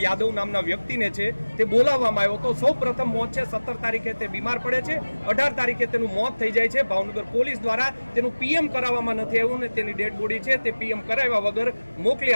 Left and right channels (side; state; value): both; inverted; correlation -1.00